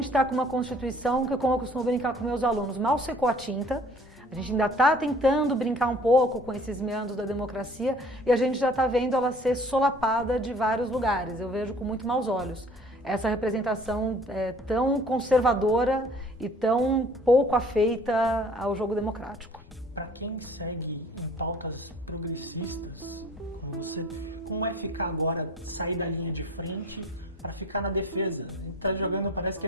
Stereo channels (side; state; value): both; normal; correlation 0.51